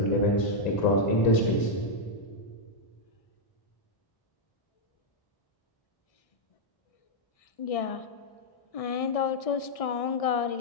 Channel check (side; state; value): right; late; 1.6 ms